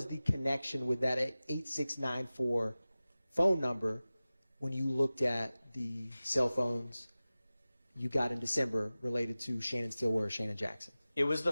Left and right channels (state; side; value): inverted; both; correlation -0.97